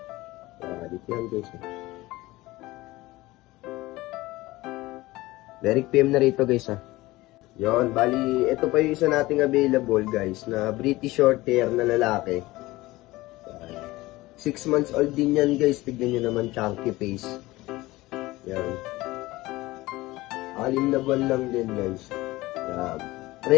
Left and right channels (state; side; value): quieter; right; 19.2 dB